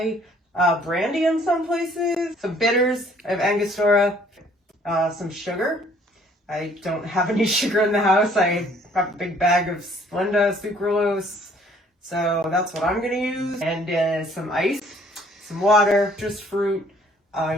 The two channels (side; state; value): both; normal; correlation 0.60